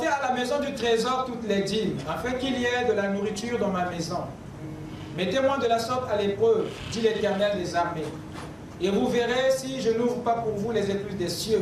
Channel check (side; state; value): both; identical; correlation 1.00